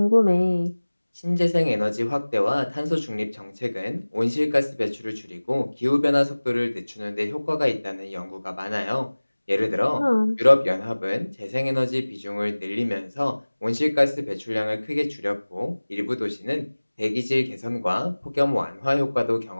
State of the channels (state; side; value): inverted; both; correlation -1.00